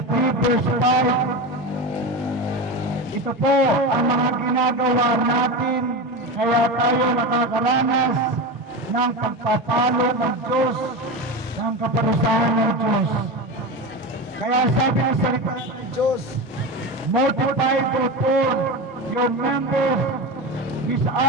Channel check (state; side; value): normal; both; correlation 0.22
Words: verse 5, ito po ang mga ginagawa natin kaya tayo nakakaranas ng pagpapalo ng Diyos, ng kaparusahan ng Diyos. Kaya sabi ng salita ng Diyos, multiply therefore your members which